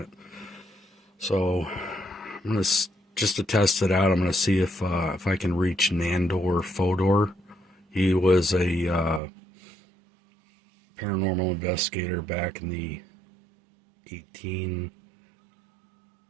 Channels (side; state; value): left; drops out; at 9.2 s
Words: So I'm gonna just to test it out, I'm gonna see if I can reach Nandor Fodor. He was a paranormal investigator back in the 18